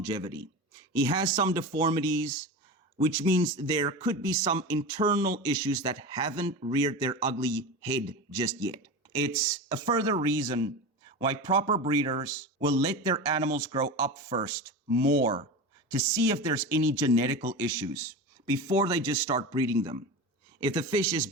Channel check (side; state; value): both; normal; correlation 0.26